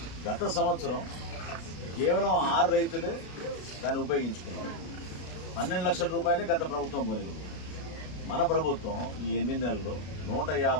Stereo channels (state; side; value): late; right; 33 ms